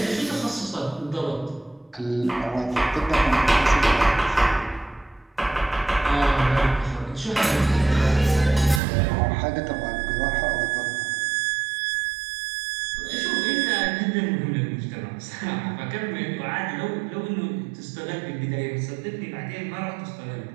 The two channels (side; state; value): left; drops out; at 8.8 s